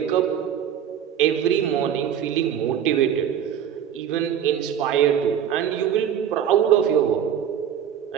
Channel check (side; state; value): left; quieter; 9.3 dB